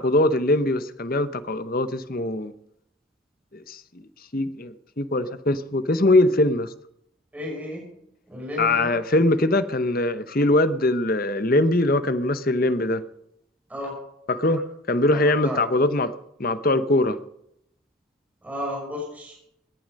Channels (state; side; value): normal; both; correlation 0.41